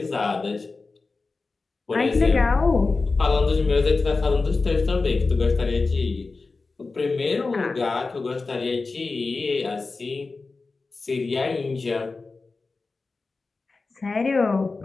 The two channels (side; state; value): right; quieter; 3.9 dB